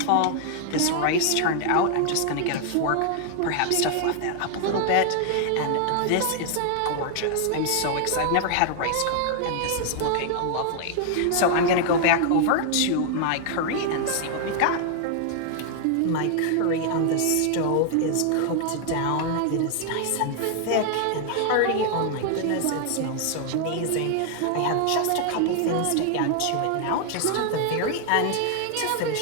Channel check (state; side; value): different; both; correlation 0.00